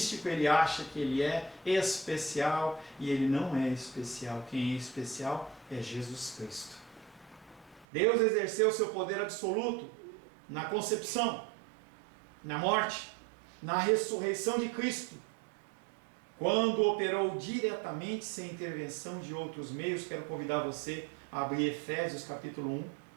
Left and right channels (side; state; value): left; drops out; at 7.9 s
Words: ele acha que ele é especial e ele não é especial. Quem é especial é Jesus Cristo. Deus exerceu o seu poder absoluto na concepção, na morte, na ressurreição de Cristo. Quando operou diretamente sem intervenção de outros meios, quero convidar você a abrir Efésios capítulo 1.